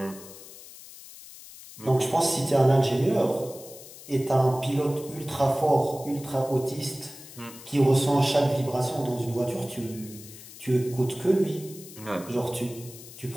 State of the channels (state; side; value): noise; left; hiss, 17 dB below the sound